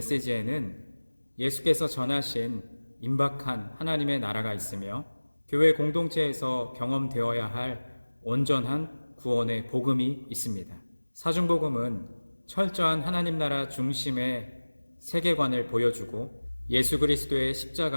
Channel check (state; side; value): inverted; both; correlation -1.00